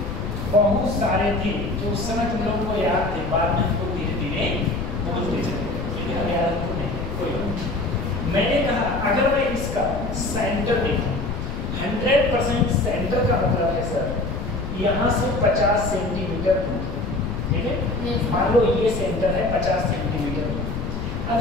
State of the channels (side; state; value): left; noise; rumble, 5 dB below the sound